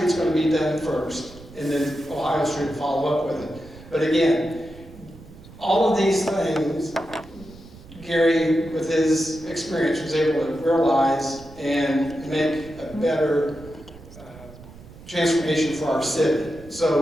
going to be done first, and then Ohio Street will follow up with it. But again, all of these things, Gary, with his experience, was able to realize and make a better transformation for our city.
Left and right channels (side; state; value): right; noise; rumble, 19 dB below the sound